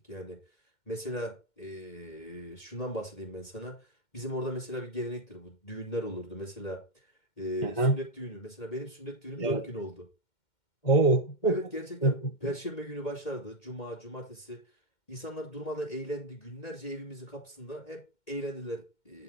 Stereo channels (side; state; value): right; late; 2.1 ms